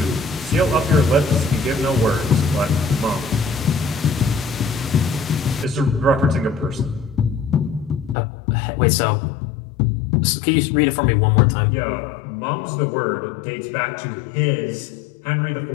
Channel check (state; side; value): drops out; right; at 8.2 s